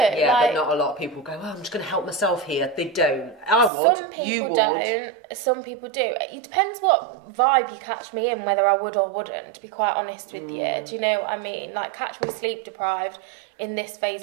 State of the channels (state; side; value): drops out; left; at 3.7 s